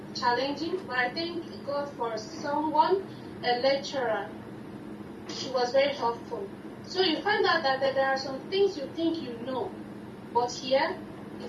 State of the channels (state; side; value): identical; both; correlation 1.00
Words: challenging, but I thank God for someone, a lecturer. She was very helpful. So you find out that there are some things you think you know, but here